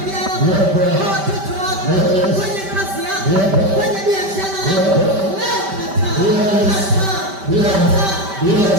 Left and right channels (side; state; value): left; late; 5.1 ms